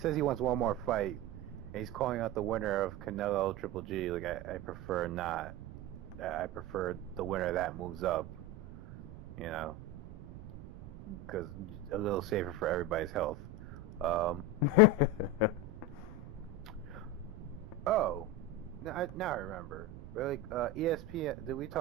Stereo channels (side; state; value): right; noise; rumble, 13 dB below the sound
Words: he wants one more fight, and he's calling out the winner of Canelo Triple G. Like, I prefer not. I prefer the winner that moves up, you know, because a little safer for everybody's health. Oh, now I remember. Really, ESPN. Did we